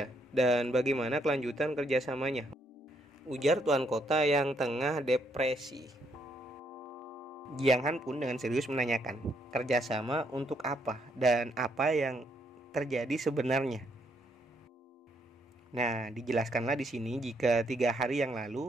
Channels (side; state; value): both; normal; correlation 0.73